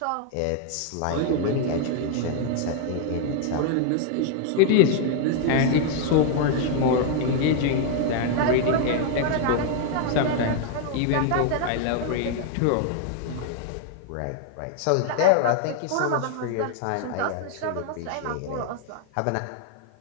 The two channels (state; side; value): different; both; correlation 0.00